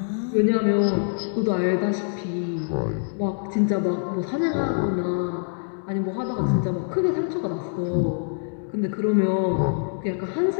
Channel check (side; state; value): right; silent; digital silence